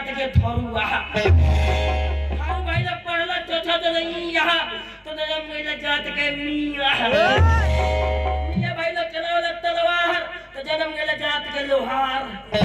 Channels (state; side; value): identical; both; correlation 1.00